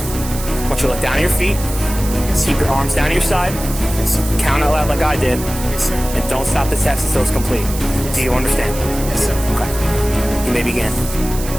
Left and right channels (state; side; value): noise; right; hiss, 11 dB below the sound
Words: want you to look down at your feet, keep your arms down to your side, Yes, sir. count out loud like I did, Yes, sir. and don't stop the test until it's complete. Do you understand? Yes, sir. Okay. You may begin.